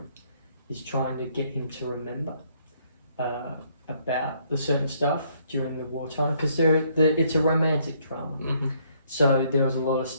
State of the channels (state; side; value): inverted; both; correlation -0.68